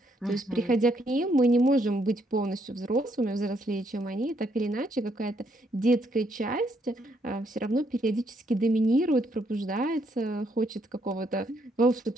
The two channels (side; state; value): both; normal; correlation 0.73